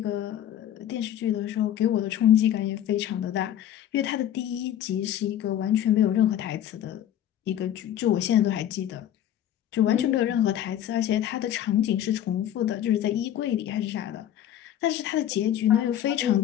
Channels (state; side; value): quieter; right; 11.1 dB